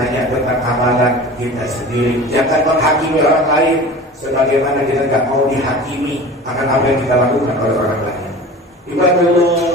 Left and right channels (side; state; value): both; normal; correlation 0.37